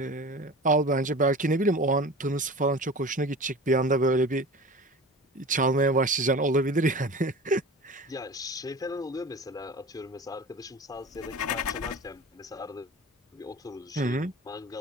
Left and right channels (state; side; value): normal; both; correlation 0.36